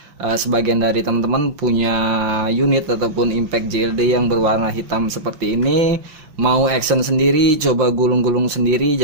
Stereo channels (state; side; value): late; left; 5.8 ms